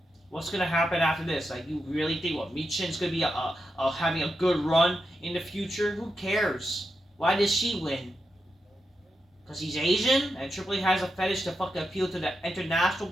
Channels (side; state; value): both; normal; correlation 0.87